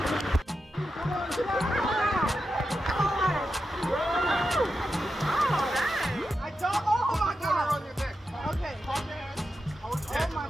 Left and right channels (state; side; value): normal; both; correlation 0.89